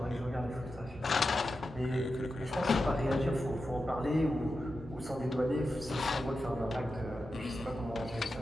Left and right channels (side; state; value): both; normal; correlation 0.90